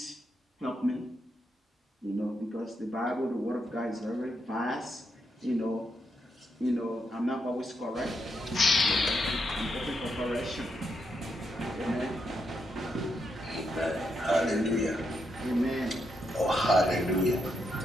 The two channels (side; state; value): both; normal; correlation 0.81